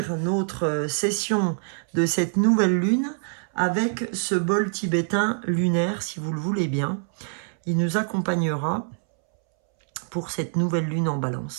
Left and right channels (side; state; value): left; silent; 62 dB below the other